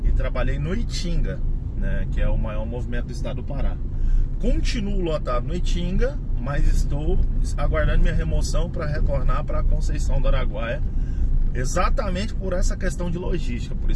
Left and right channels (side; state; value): both; identical; correlation 1.00